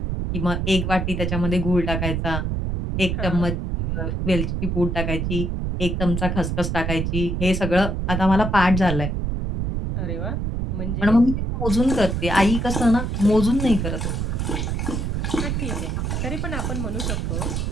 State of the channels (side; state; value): right; noise; rumble, 1 dB below the sound